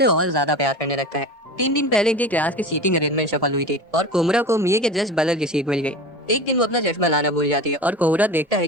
और ज्यादा प्यार करने लगता है। 3 दिन पहले इनकी क्लास की सीटिंग अरेंजमेंट सफल हुई थी और कोमुरा को मिये के जस्ट बगल की सीट मिल गई। एक दिन वो अपना चश्मा लाना भूल जाती है और कोमुरा देखता है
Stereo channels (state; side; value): normal; both; correlation 0.32